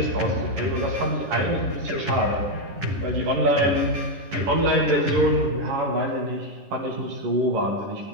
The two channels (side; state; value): left; late; 10 ms